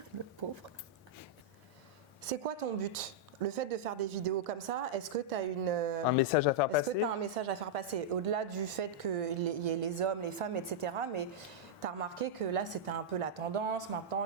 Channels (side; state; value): both; normal; correlation -0.07